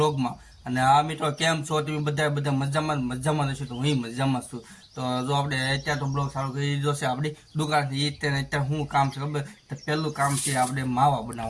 અને આ મિત્રો કેમ છો તમે બધા મજામાં હશો તો હું મજામાં છું. તો જો આપણે અત્યારે તો બ્લોગ સારું કરી દીધો છે આપણી દુકાનથી અત્યારે શું કામ છે ખબર તો પહેલું કામ છે આપણે માવા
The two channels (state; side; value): identical; both; correlation 1.00